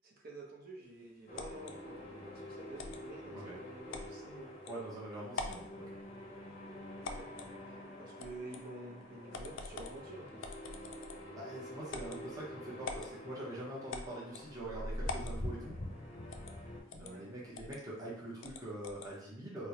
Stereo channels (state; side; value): normal; both; correlation 0.41